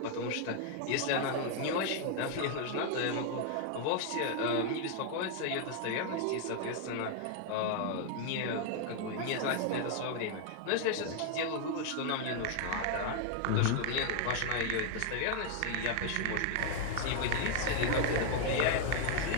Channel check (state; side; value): different; both; correlation 0.00